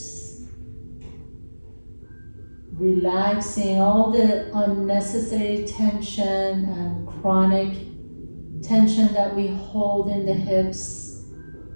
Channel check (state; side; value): inverted; both; correlation -1.00